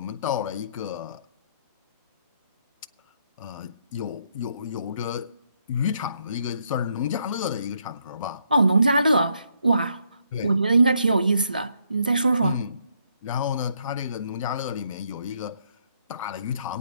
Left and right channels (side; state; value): both; inverted; correlation -0.73